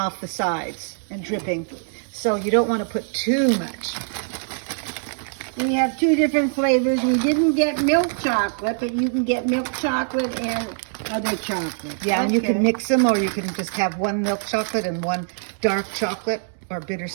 the sides and dripping. So you don't want to put too much. We have 2 different flavors. We didn't get milk chocolate, but you can get milk chocolate and other chocolate. Yeah, and you can Okay. mix them, or you can just have one milk chocolate and one dark chocolate or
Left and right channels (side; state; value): left; silent; digital silence